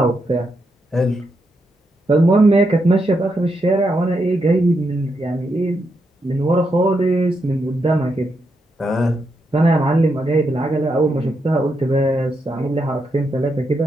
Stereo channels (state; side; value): normal; both; correlation 0.82